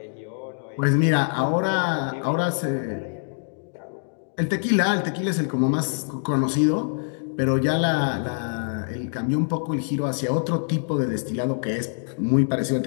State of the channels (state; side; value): silent; right; digital silence